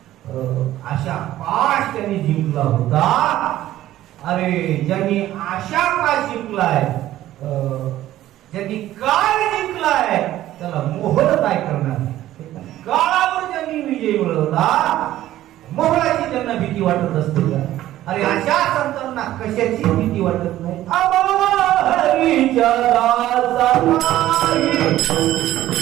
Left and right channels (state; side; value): quieter; left; 14.0 dB